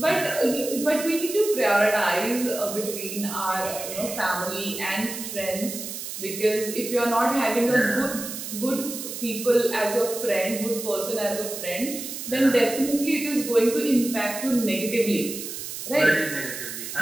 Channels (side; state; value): right; noise; hiss, 8 dB below the sound